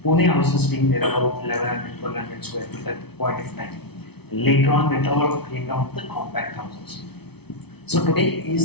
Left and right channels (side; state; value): right; late; 0.98 ms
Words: Pune houses being there about 1100, 1200 square feet at the point of time. Later on, it all came down to the compact houses. So today,